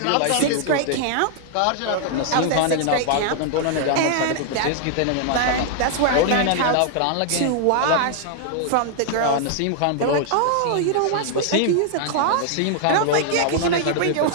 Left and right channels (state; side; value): different; both; correlation 0.00